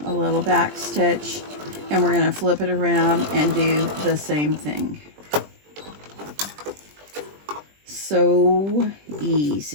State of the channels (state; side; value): late; left; 20 ms